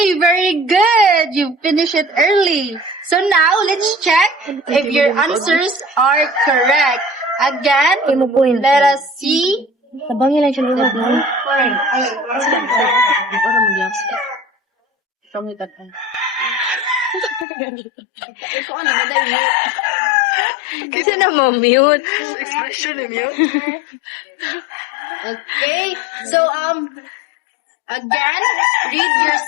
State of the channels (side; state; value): right; drops out; at 17.4 s